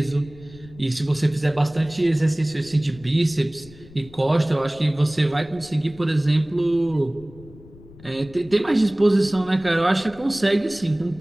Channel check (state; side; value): noise; left; rumble, 21 dB below the sound